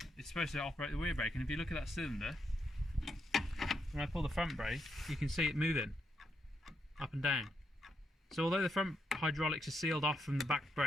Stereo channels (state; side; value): normal; both; correlation 0.79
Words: it's supposed to operate the rear brake, and if you look at that cylinder, when I pull the front brake, you can see it moving up and down. So although the front hydraulics are sealed off from the back